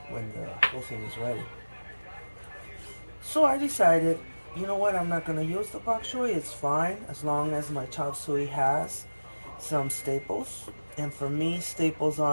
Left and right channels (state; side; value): inverted; both; correlation -1.00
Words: when the whole thing is ready. So I decided, you know what, I'm not going to use the bok choy. It's fine as long as my chop suey has some staples. And for me, staples